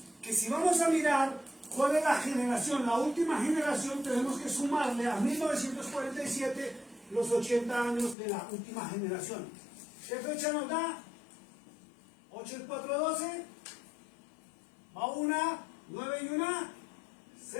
Que si vamos a mirar cuál es la generación, la última generación, tenemos que sumarle a 1947 los 80 años de la última generación. ¿Qué fecha nos da? 8 y 4, 12. Va 1, 9 y 1,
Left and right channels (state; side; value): drops out; right; at 8.2 s